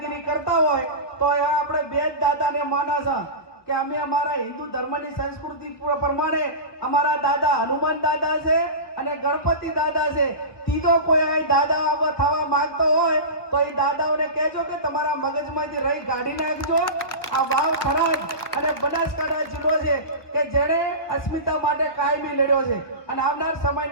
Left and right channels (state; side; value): late; right; 1.3 ms